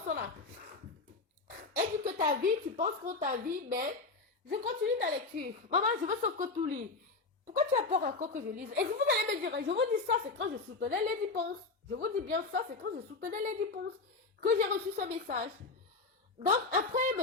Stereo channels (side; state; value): right; quieter; 3.9 dB